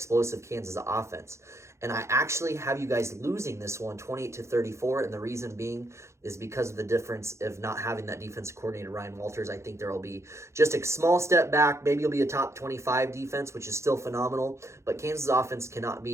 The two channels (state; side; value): late; left; 0.14 ms